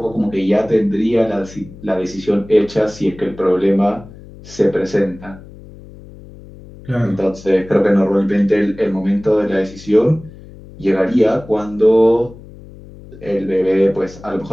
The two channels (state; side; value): noise; left; hum, 19 dB below the sound